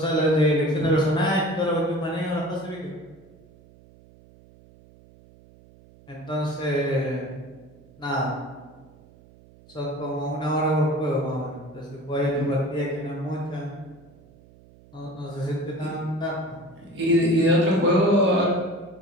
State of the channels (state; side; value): noise; right; hum, 25 dB below the sound